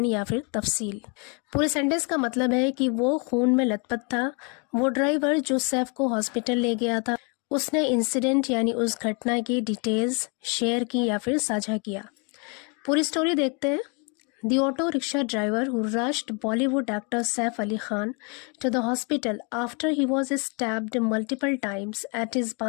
या फिर तफसील. पूरे सेंटेंस का मतलब है कि वो खून में लथपथ था. वो ड्राइवर जो सैफ को हॉस्पिटल ले गया था उसने इंसिडेंट यानी उस घटना की डिटेल्स शेयर की या फिर साझा किया. पूरी स्टोरी देखते हैं. The auto rickshaw driver who rushed Bollywood actor Saif Ali Khan to the hospital after he was stabbed multiple times at his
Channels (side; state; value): right; quieter; 34.5 dB